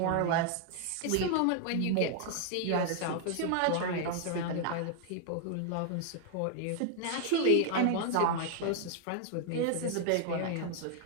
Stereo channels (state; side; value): different; both; correlation 0.00